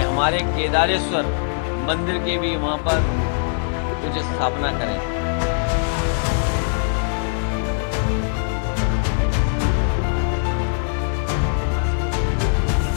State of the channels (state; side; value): silent; right; digital silence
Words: हमारे केदारेश्वर मंदिर के भी वहां पर कुछ स्थापना करें।